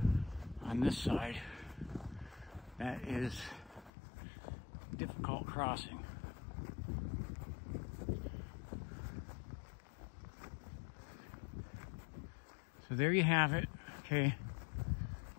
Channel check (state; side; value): drops out; right; at 3.9 s